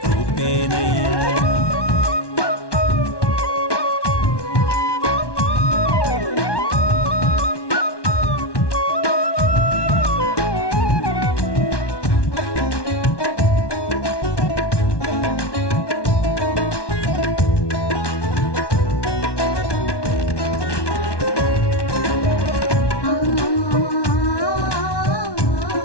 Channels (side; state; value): right; late; 1.1 ms